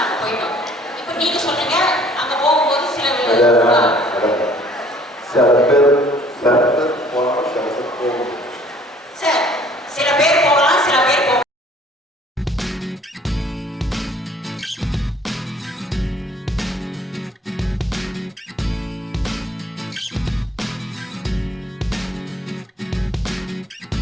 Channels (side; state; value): both; normal; correlation 0.56